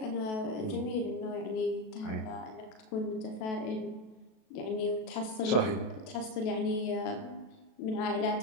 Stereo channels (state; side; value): late; right; 37 ms